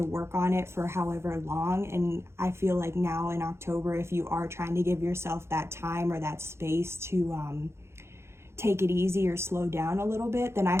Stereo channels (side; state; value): left; late; 0.13 ms